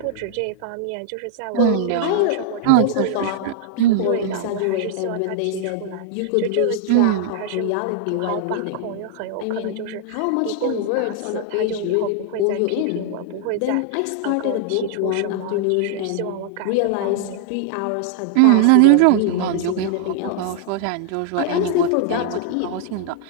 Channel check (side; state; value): both; different; correlation -0.01